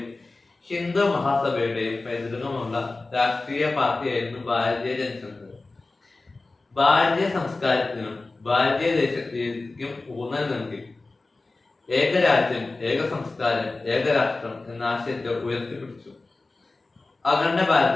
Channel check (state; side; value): quieter; right; 3.4 dB